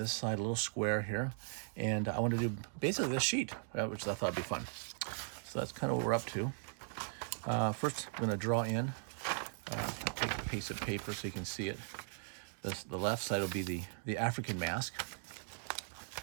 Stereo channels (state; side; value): silent; left; digital silence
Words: side, a little square here. And I wanted to do basically this sheet, which I thought would be fun. So that's kind of what we're up to. First, I'm going to draw in, take a piece of paper so you can see it. The left side will be the African mask.